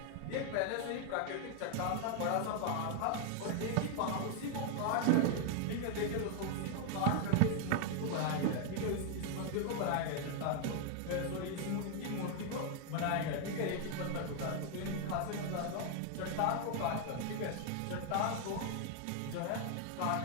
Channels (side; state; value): both; different; correlation 0.00